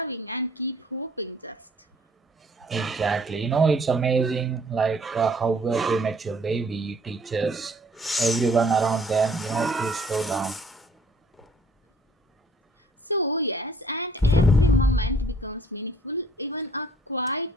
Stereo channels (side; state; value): both; normal; correlation 0.59